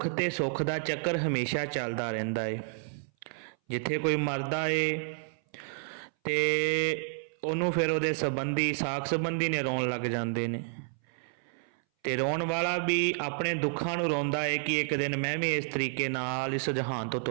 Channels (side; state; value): left; silent; 58 dB below the other